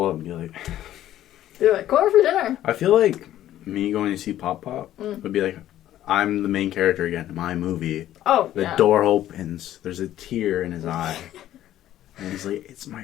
up and be like... Do it. Go over for dinner. I feel like me going to see Pop-Pop would be like, I'm the main character again in my movie. Oh, The door opens. There's a tear in his eye. And he's like, it's my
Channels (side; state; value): right; quieter; 12.8 dB